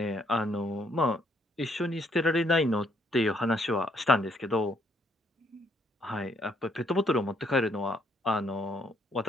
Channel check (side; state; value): both; normal; correlation 0.69